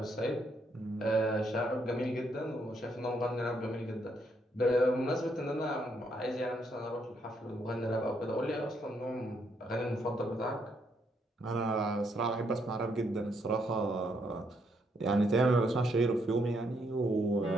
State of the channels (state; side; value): normal; both; correlation 0.74